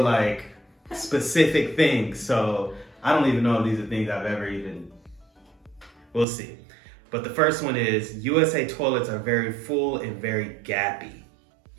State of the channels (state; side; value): drops out; left; at 6.2 s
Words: like specific things. So I don't even know if these are things I've ever even. We'll see. But the first one is USA toilets are very full and very gappy.